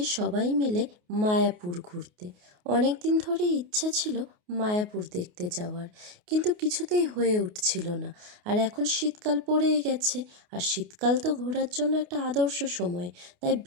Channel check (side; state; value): left; late; 28 ms